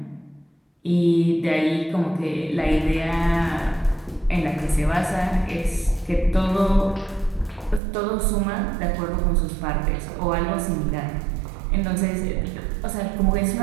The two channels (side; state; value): left; drops out; at 7.8 s